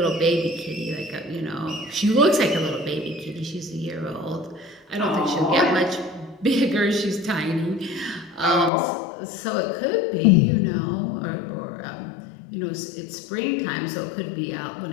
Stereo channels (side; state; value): right; drops out; at 8.7 s